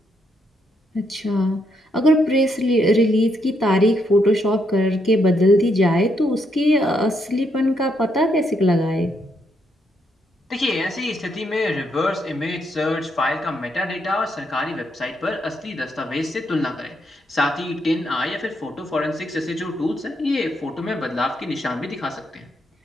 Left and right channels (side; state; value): both; normal; correlation 0.77